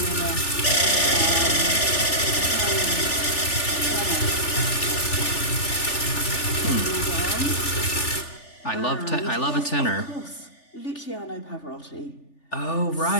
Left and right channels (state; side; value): late; right; 3.4 ms